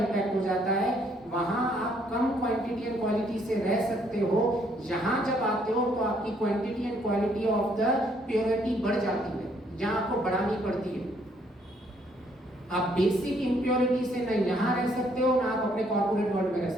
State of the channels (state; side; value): normal; both; correlation 0.67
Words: हो जाता है। वहां आप कम क्वांटिटी एंड क्वालिटी से रह सकते हो, यहाँ जब आते हो तो आपकी quantity and quality of the purity बढ़ जाती है, जहाँ आपको बढ़ानी पड़ती है। आप बेसिक इम्प्योरिटी से नहीं यहाँ रह सकते हो, ना आप अपने कॉर्पोरेट वर्ल्ड में रह